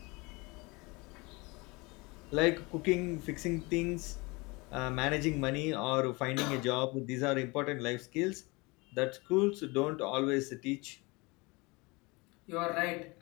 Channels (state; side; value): quieter; right; 25.8 dB